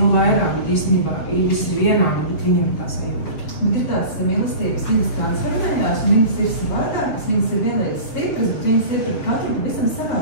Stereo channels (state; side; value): late; right; 7.4 ms